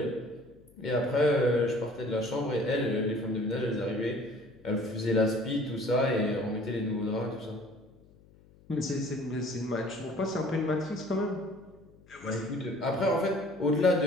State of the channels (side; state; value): left; noise; hum, 26 dB below the sound